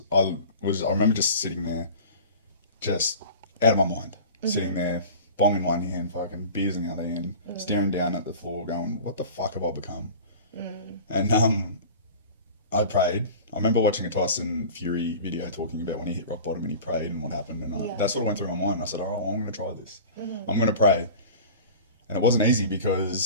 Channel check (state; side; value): inverted; both; correlation -0.39